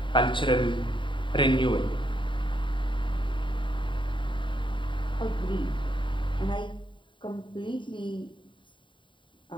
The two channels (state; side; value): late; right; 0.23 ms